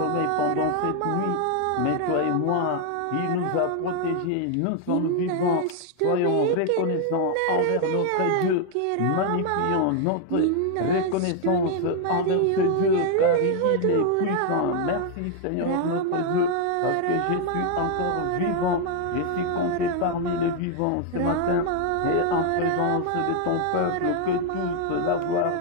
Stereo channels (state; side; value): different; both; correlation 0.00